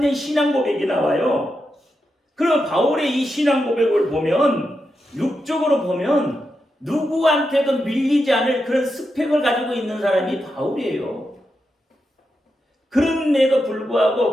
신앙 고백이 나와요. 그럼 바울의 이 신앙 고백을 보면 육적으로 보면 누구한테도 밀리지 않을 그런 스펙을 가지고 있는 사람이 바울이에요. 그런데도 불구하고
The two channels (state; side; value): normal; both; correlation 0.87